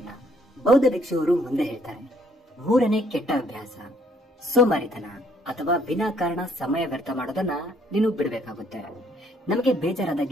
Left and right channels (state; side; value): normal; both; correlation 0.66